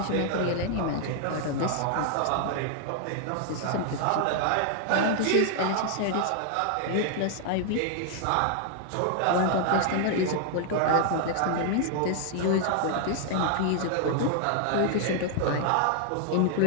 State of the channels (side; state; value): both; different; correlation 0.00